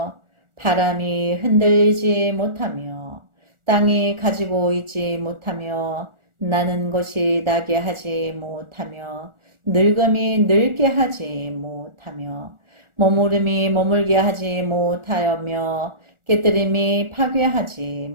바람이 흔들리지 못하며 땅이 가지고 있지 못하며 나는 것이 나게 하지 못하며 늙음이 늙게 하지 못하며 머무름이 머물게 하지 못하며 깨뜨림이 파괴하지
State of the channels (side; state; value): left; late; 1.4 ms